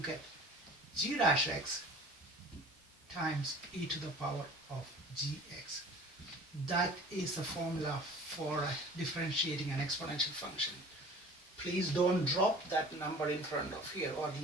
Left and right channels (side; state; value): both; normal; correlation 0.44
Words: get g dash x times e to the power of gx. That is the formula for differentiating an exponential function. Please don't drop that number in front of here, or